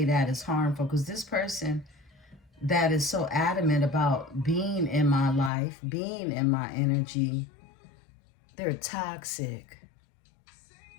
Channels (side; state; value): right; drops out; at 5.5 s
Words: that is harmful, because this person that is so adamant about being in my life, being in my energy, they're toxic.